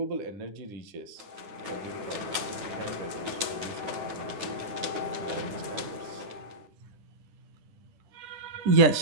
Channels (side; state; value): left; late; 9.4 ms